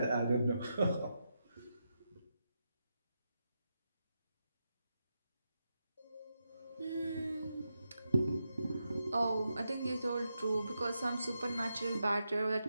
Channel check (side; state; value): both; inverted; correlation -0.86